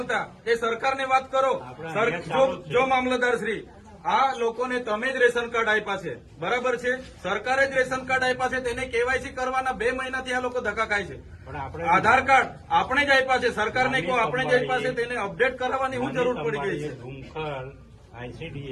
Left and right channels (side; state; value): both; identical; correlation 1.00